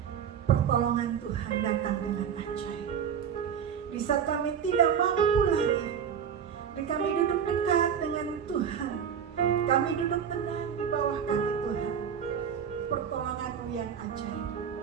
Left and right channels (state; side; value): quieter; left; 7.9 dB